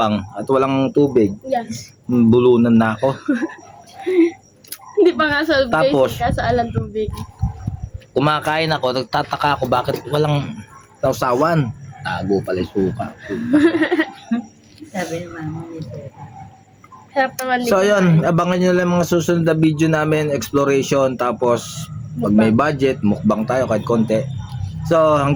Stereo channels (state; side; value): identical; both; correlation 1.00